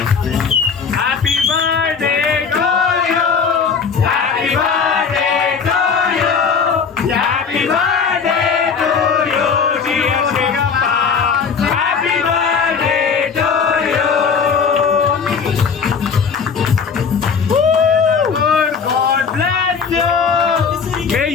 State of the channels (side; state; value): right; quieter; 6.0 dB